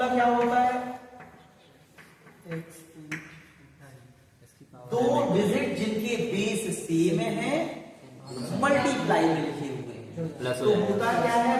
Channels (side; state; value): both; identical; correlation 1.00